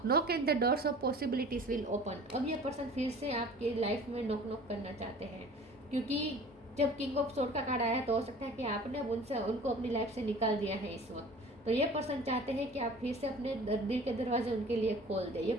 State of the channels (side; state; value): both; normal; correlation 0.45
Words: knock and the doors of possibilities will open. अब ये पर्सन फिर से आपकी लाइफ में नॉक नॉक करना चाहते हैं, क्योंकि जब किंग ऑफ सोर्ड का कार्ड आया तो हो सकता है कि आपने उनको अपनी लाइफ से निकाल दिया है इस वक्त। तो ये पर्सन चाहते हैं कि आप फिर से अपने दिल के दरवाजे उनके लिए खोल दे। ये